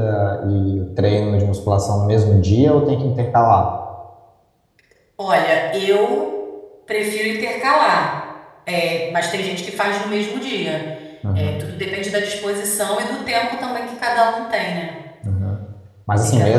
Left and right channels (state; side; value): identical; both; correlation 1.00